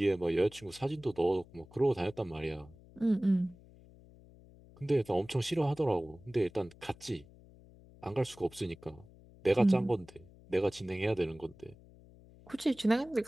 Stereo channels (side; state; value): left; noise; hum, 23 dB below the sound